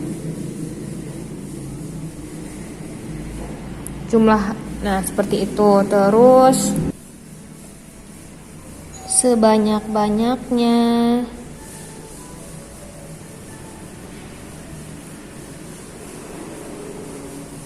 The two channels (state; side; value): identical; both; correlation 1.00